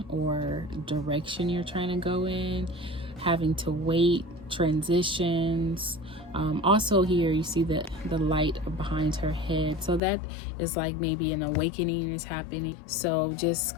or direction you're trying to go in, having to wait, transitions. Also here you see the light behind her head, so that is like maybe an awakening is happening. So just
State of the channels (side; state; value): right; drops out; at 10.0 s